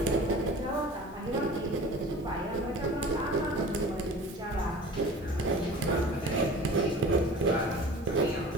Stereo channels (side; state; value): both; normal; correlation 0.40